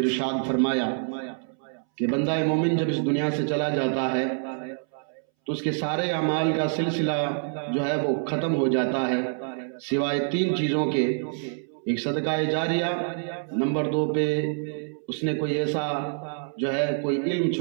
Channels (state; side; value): silent; left; 61 dB below the other